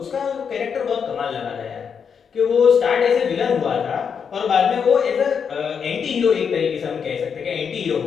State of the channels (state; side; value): quieter; right; 6.8 dB